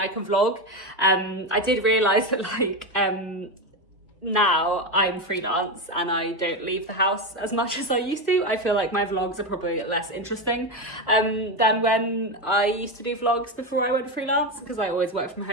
can vlog. I did realise that like, now I'm freelance and I don't leave the house as much as I used to. I feel like my vlogs are probably less interesting than when I used to do vlogs before I went freelance, because I always work from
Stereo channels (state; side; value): normal; both; correlation 0.14